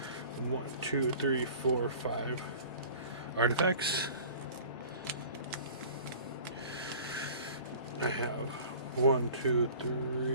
1, 2, 3, 4, 5 artifacts. I have 1, 2,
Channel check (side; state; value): both; inverted; correlation -0.45